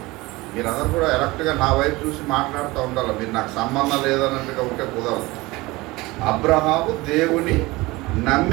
మీరందరూ కూడా ఎలక్ట్గా నా వైపు చూసి మాట్లాడుతూ ఉండాలి, మీరు నాకు సంబంధం లేదన్నట్టుగా ఉంటే కుదరదు. అబ్రహాము దేవుని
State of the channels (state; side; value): quieter; left; 21.4 dB